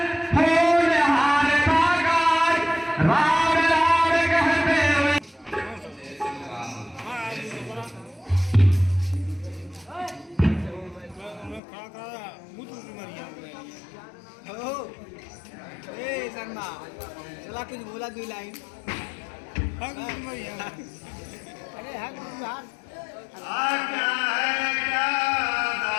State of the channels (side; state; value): right; drops out; at 11.6 s